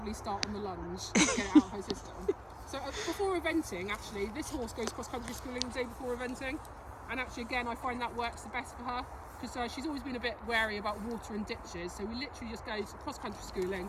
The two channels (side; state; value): both; identical; correlation 1.00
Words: start on the lunge to get it out of her system. So before eventing, actually, this horse goes cross country schooling the day before eventing, and actually again I find that works the best for her, because she's always been a bit wary about water and ditches. So we literally just go to cross country schooling,